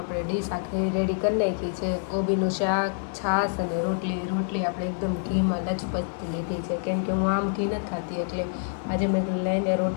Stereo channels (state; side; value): silent; right; digital silence